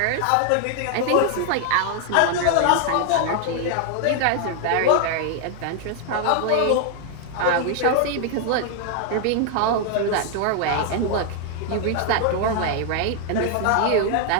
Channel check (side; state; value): both; different; correlation 0.00